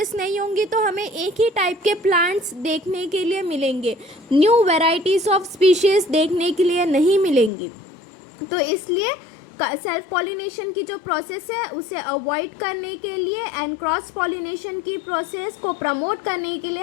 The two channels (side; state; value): right; drops out; at 7.5 s